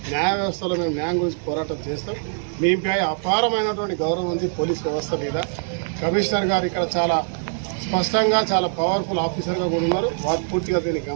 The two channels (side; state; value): left; silent; digital silence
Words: న్యాయ వ్యవస్థలో మేము న్యాయం గురించి పోరాటం చేస్తాం. మీపై అపారమైనటువంటి గౌరవం ఉంది పోలీస్ వ్యవస్థ మీద. కమిషనర్ గారు ఇక్కడ చాలా స్పష్టంగా, చాలా పవర్ఫుల్ ఆఫీసర్గా కూడా ఉన్నారు. వారు పూర్తిగా దీన్ని